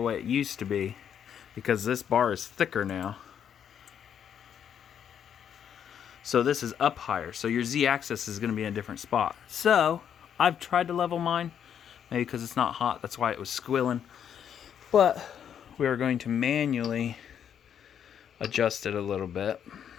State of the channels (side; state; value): right; quieter; 8.7 dB